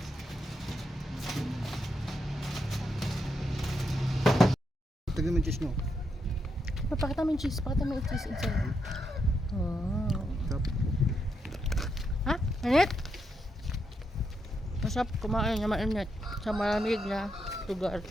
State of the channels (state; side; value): normal; both; correlation 0.81